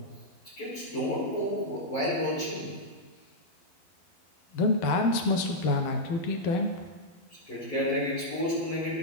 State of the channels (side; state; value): right; late; 12 ms